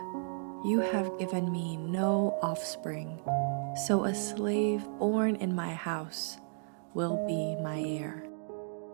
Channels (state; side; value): silent; left; digital silence